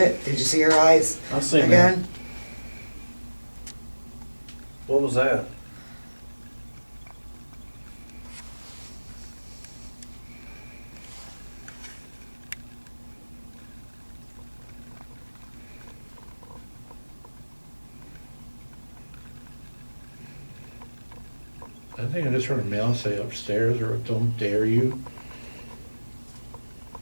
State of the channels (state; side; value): inverted; both; correlation -1.00